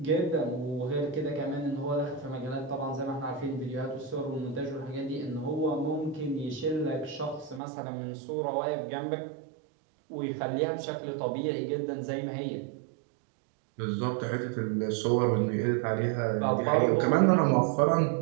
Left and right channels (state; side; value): drops out; left; at 7.6 s